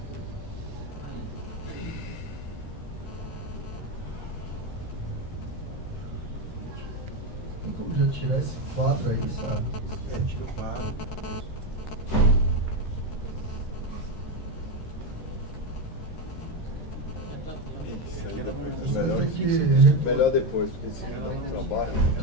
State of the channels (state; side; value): late; right; 13 ms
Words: Tem como já tirar esse quadro aí, sabe? Tira o quadro. Melhor depois, porque senão não trabalha.